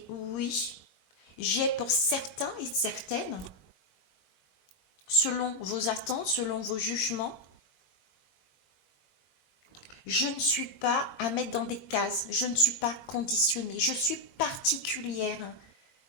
Oui, j'ai pour certains et certaines, selon vos attentes, selon vos jugements, je ne suis pas à mettre dans des cases, je ne suis pas conditionnée, je suis particulière.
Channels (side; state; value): right; late; 22 ms